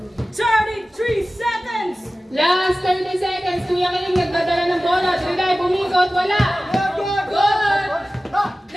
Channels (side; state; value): both; normal; correlation 0.96